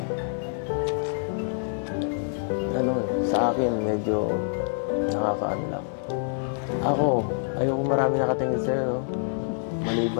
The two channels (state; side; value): silent; right; 61 dB below the other